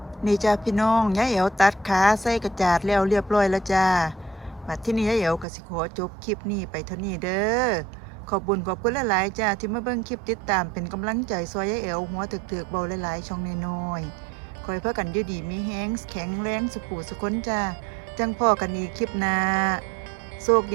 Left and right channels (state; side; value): drops out; left; at 5.5 s